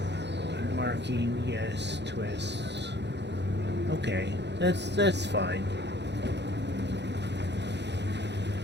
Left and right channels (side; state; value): left; late; 0.50 ms